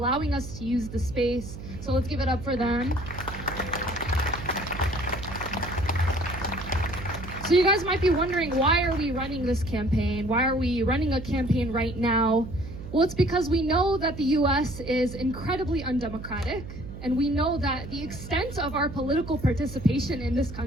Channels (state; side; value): noise; right; hum, 11 dB below the sound